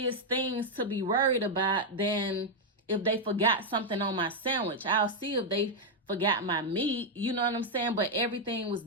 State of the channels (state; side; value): normal; both; correlation -0.01